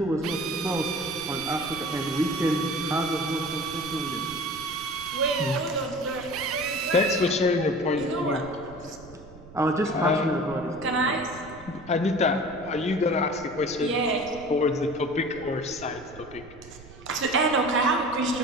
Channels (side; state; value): right; noise; rumble, 19 dB below the sound